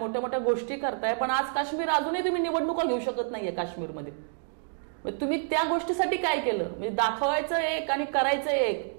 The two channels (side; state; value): left; silent; digital silence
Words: मोठ्या गोष्टी करताय, पण आज काश्मीर अजूनही तुम्ही निवडणुका घेऊ शकत नाहीये काश्मीरमध्ये. तुम्ही त्या गोष्टीसाठी काय केलं? म्हणजे दाखवायचं एक आणि करायचं एक,